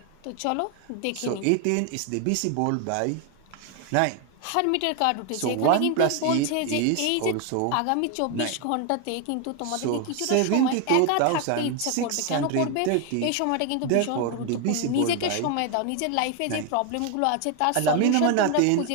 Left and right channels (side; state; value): both; different; correlation 0.01